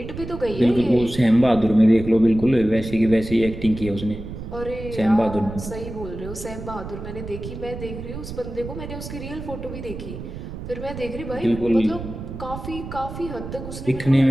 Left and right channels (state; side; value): noise; right; rumble, 10 dB below the sound